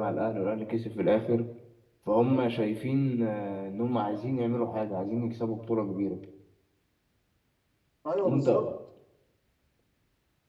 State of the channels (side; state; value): both; identical; correlation 1.00